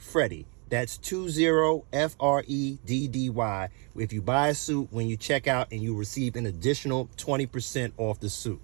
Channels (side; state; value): left; quieter; 34.9 dB